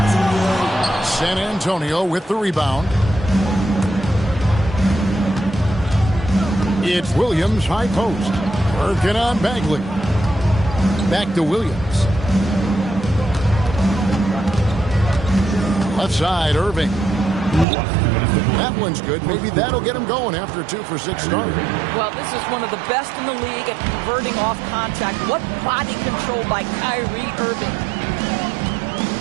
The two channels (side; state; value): left; drops out; at 17.7 s